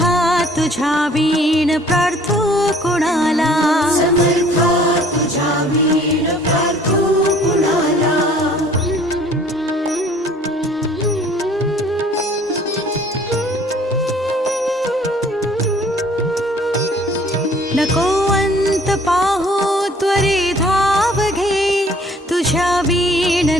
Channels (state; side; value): normal; both; correlation 0.55